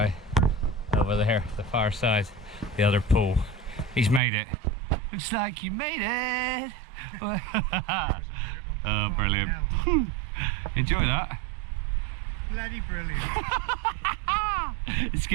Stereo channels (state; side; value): drops out; left; at 4.2 s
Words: over there, the far side, the other pool. He's made it. Looks like you made it. Oh, brilliant. Enjoy that. Bloody brilliant. It's